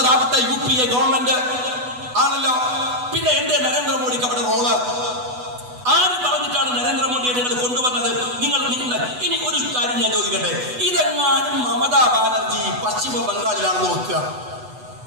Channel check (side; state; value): left; late; 8.1 ms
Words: UPA ഗവൺമെന്റ് ആണല്ലോ. പിന്നെ എന്റെ നരേന്ദ്രമോദിക്ക് അവിടെ റോള്? ആര് പറഞ്ഞിട്ടാണ് നരേന്ദ്രമോദിയെ നിങ്ങൾ കൊണ്ടുവന്നത്? നിങ്ങൾ ഇനി ഒരു കാര്യം ഞാൻ ചോദിക്കട്ടെ, ഇതെങ്ങാനും മമതാ ബാനർജി പശ്ചിമ ബംഗാളിലാണെന്ന് വെക്കുക,